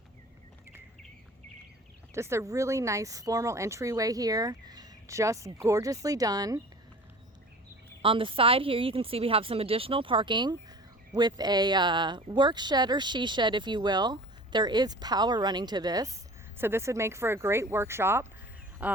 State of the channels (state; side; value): normal; both; correlation 0.42